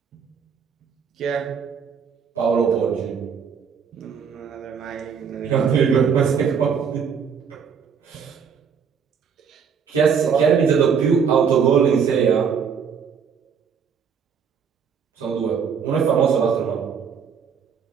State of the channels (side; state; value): left; quieter; 6.7 dB